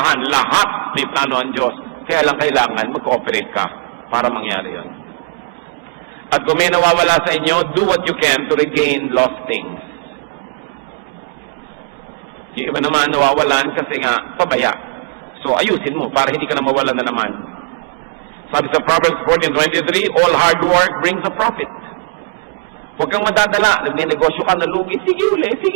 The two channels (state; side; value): silent; left; digital silence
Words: Lahat may plano ang Diyos. Kaya lang kailangan mag-cooperate ka para mangyari yon. At kung may nawawala sa inyo, do what you can to regain lost things. Yung iba naman nawawalan kasi nga pabaya. So ayusin mo para hindi ka na mawalan na naman. Sabi sa Proverbs 14:23, all hard work brings a profit. Huwag kang madadala. Nagnenegosyo ka, nalugi. Sige uli.